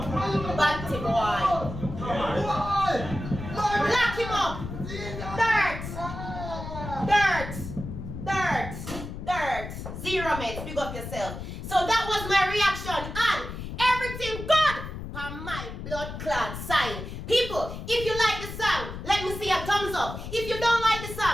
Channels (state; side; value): noise; left; rumble, 8 dB below the sound